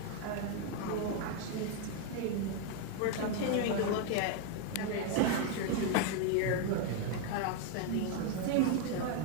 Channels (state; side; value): different; both; correlation 0.01